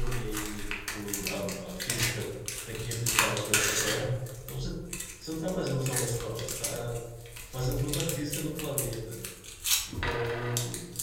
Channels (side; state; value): both; identical; correlation 1.00